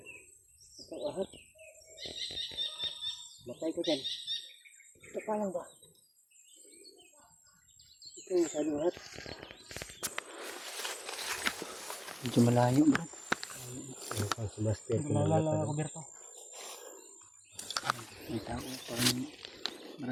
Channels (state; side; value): identical; both; correlation 1.00